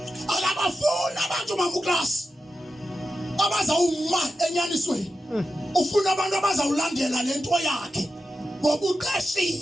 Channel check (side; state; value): both; normal; correlation 0.91